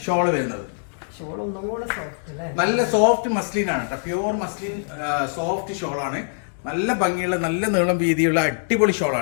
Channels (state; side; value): silent; right; 63 dB below the other